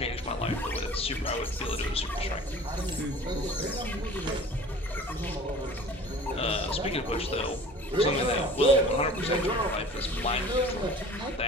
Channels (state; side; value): normal; both; correlation 0.44